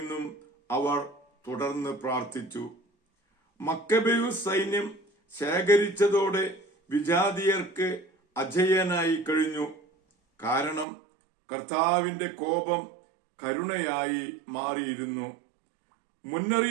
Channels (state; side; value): drops out; left; at 10.9 s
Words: അവർ തുടർന്ന് പ്രാർത്ഥിച്ചു. മക്കബേയൂസ് സൈന്യം ശേഖരിച്ചതോടെ വിജാതീയർക്ക് അജയ്യനായി കഴിഞ്ഞു. കാരണം കർത്താവിന്റെ കോപം കരുണയായി മാറിയിരുന്നു.